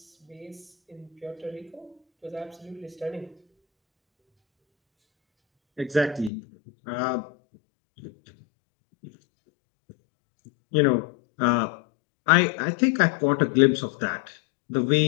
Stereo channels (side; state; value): right; drops out; at 6.3 s